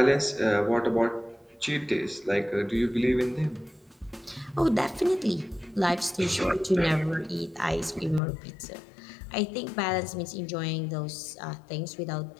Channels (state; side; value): drops out; right; at 8.2 s